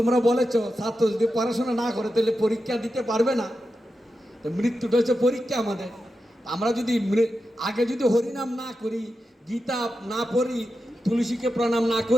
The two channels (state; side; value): normal; both; correlation 0.89